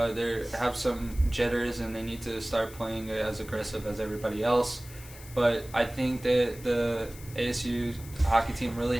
have some jitters, and they need to start playing as aggressive as everybody else. But I think that the ASU hockey team really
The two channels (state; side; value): noise; left; hiss, 18 dB below the sound